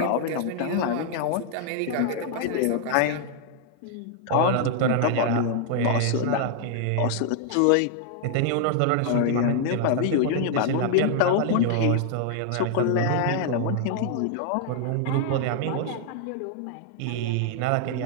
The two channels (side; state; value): both; different; correlation 0.00